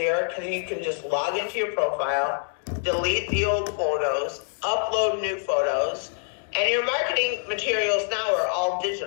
because you can just log into your profile, delete the old photos, upload new photos, and your marketing materials now are all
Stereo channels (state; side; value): silent; right; digital silence